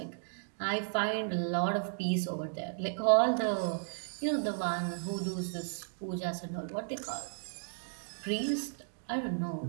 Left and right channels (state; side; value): silent; left; digital silence